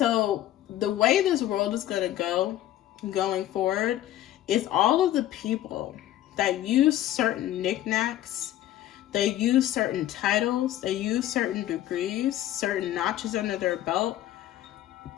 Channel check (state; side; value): quieter; right; 13.3 dB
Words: the way this world is gonna go going forward is all of the people that use certain knickknacks, they use certain titles, they use certain degrees, certain notches under their belt,